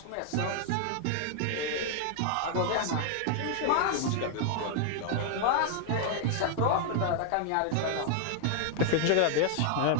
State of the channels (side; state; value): both; different; correlation 0.00